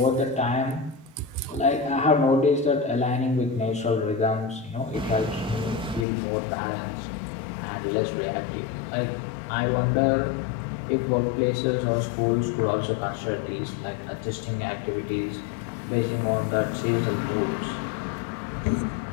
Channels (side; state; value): right; drops out; at 6.1 s